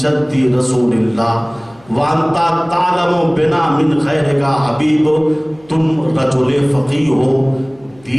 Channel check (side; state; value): left; noise; hum, 29 dB below the sound